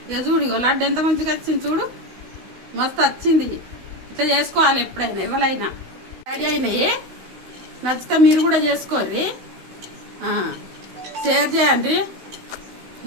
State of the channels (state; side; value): late; left; 16 ms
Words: ఇక చూడు, ఇగో లడ్డు ఎంత మంచిగా వచ్చింది చూడు, మస్తు వచ్చింది. ఇట్లా చేసుకోవాలి ఎప్పుడైనా ఎవరైనా. రెడీ అయినాయి. నచ్చితే మీరు కూడా చేసుకోర్రి, షేర్ చేయండి,